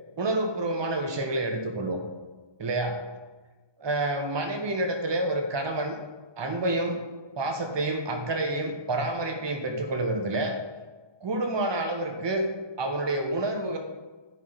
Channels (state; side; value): late; left; 1.2 ms